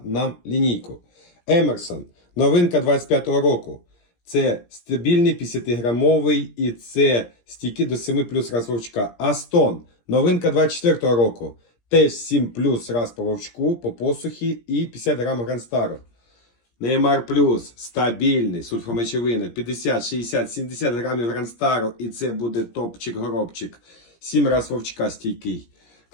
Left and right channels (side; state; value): right; late; 17 ms